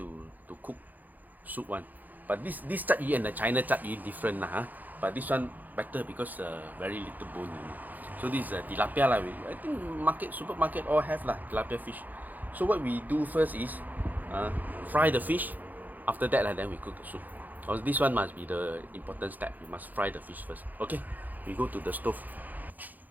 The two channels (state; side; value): late; left; 0.083 ms